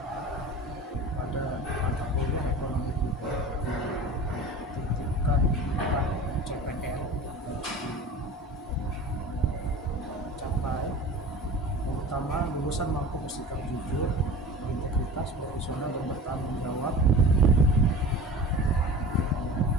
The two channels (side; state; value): both; normal; correlation 0.37